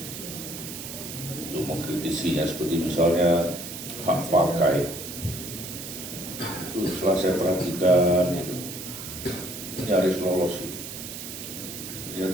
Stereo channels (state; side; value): noise; right; hiss, 9 dB below the sound